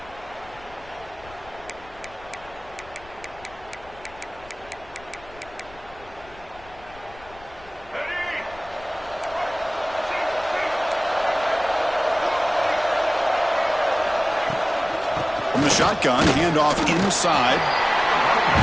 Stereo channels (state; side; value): noise; left; rumble, 22 dB below the sound